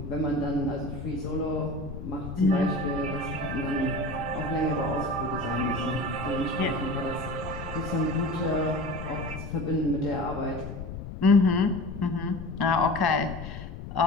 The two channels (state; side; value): noise; left; rumble, 9 dB below the sound